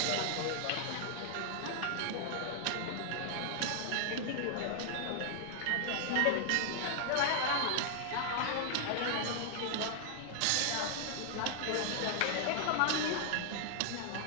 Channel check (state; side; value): different; both; correlation 0.00